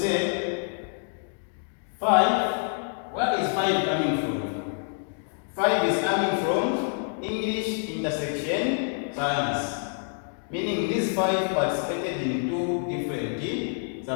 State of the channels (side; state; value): right; silent; 60 dB below the other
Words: 5. Where is 5 coming from? 5 is coming from English intersection science. Meaning these 5 participated in 2 different